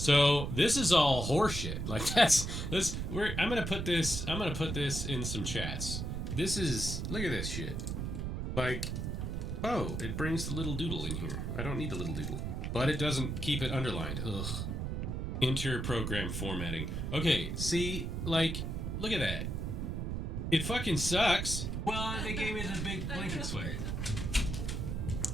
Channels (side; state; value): right; noise; rumble, 3 dB below the sound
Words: this is all horseshit. Like I'm gonna put this in some chats. This is, look at this shit. Like, oh, it brings the little doodle in here. I don't need the little doodle. But it doesn't keep it underlined. Ugh. Enter program formatting. Okay, see, like, look at that. It fucking sucks. Well, they gave me the big blanket swag.